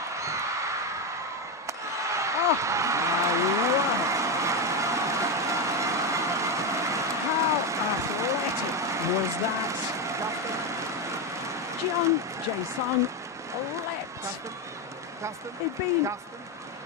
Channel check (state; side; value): normal; both; correlation 0.11